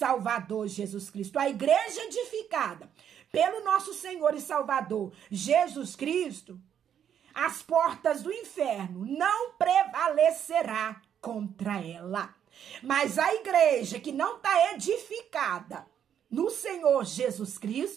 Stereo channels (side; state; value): left; quieter; 9.0 dB